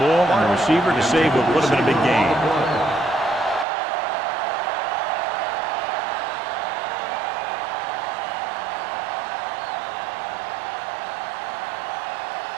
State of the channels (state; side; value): drops out; left; at 3.7 s